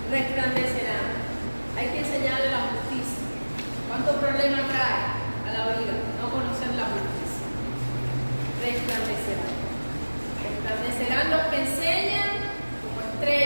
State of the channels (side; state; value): both; inverted; correlation -1.00